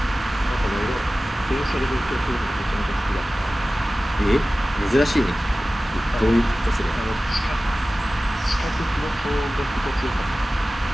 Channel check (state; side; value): normal; both; correlation 0.96